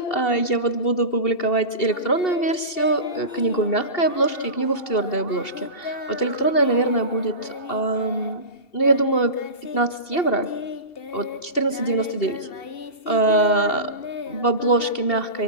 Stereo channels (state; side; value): late; right; 2.7 ms